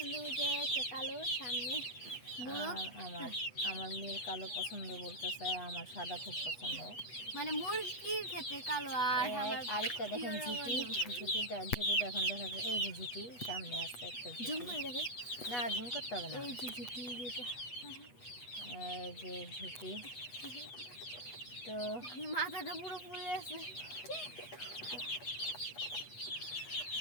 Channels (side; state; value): right; late; 8.2 ms